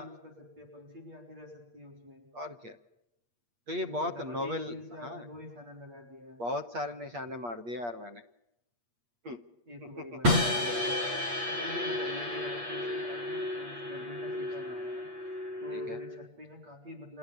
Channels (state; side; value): late; left; 8.5 ms